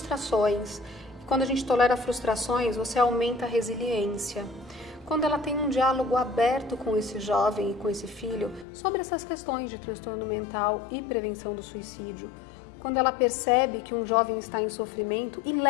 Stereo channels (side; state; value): right; drops out; at 8.7 s